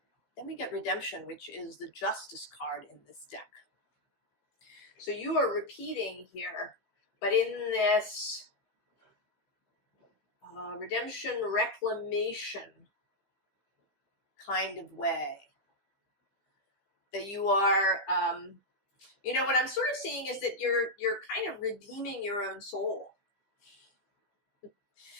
Then we get Redemption, which is the Justice card in this deck. So you are repeating here, but in this redemption, reclamation kind of way. That you are, you know, what I'm sort of seeing is that you're kind of redeeming your own soul.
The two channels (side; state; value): right; late; 15 ms